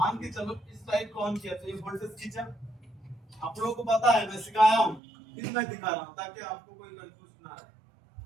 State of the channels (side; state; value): left; drops out; at 5.0 s